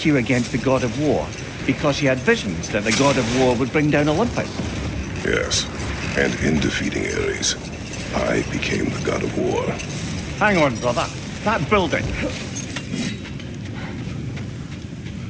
you against the god of war because she had visions that the god of war would bring down Olympus. Yes, and in defeating Ares, I became the god of war. Hang on, brother. That building.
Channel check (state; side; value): identical; both; correlation 1.00